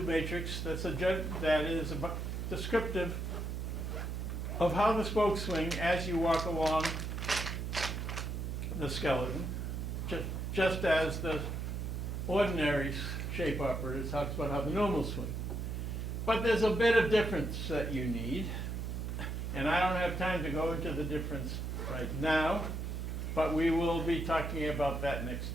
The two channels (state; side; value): noise; right; hum, 3 dB below the sound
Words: matrix that is descriptive of how the spokes swing as you walk along the skeleton, just as the ordinary shape operator talks about how the normals swing. But there's a bit of difference that you need, and I don't have time to go into the difference right now, but we will be talking about that next